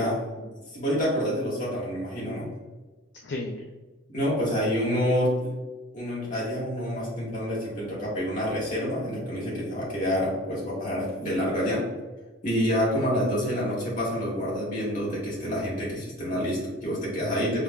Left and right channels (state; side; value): normal; both; correlation 0.42